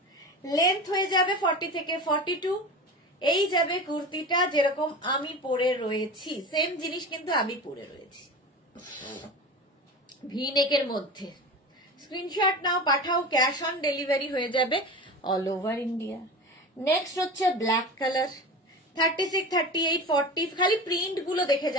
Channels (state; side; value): normal; both; correlation 0.30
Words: লেন্থ হয়ে যাবে 40 থেকে 42। এই যাবে কুর্তিটা, যেরকম আমি পরে রয়েছি সেম জিনিস কিন্তু আমি পরে রয়েছি, ভি নেকের মধ্যে। স্ক্রিনশট নাও, পাঠাও। ক্যাশ অন ডেলিভারি হয়ে যাবে অল ওভার ইন্ডিয়া। নেক্সট হচ্ছে ব্ল্যাক কালার, 36, 38, 40। খালি প্রিন্ট গুলো দেখে